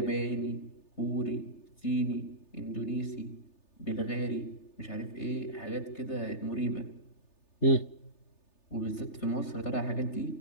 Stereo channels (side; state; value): right; late; 3.3 ms